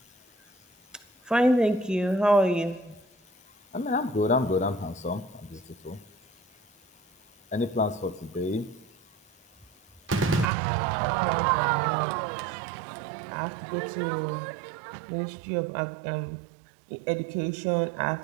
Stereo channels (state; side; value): drops out; left; at 10.5 s